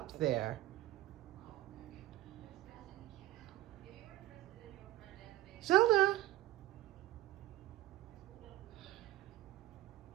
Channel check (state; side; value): quieter; left; 15.1 dB